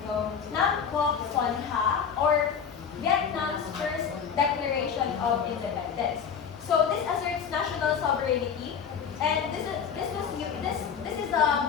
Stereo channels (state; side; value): quieter; right; 7.2 dB